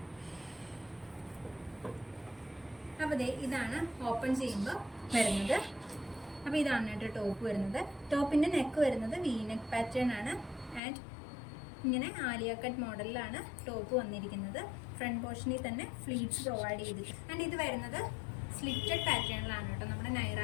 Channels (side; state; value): right; drops out; at 10.8 s